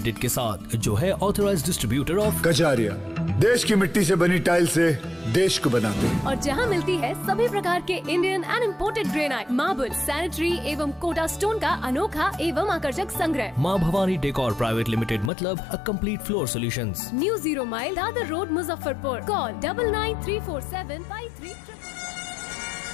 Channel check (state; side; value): drops out; right; at 15.3 s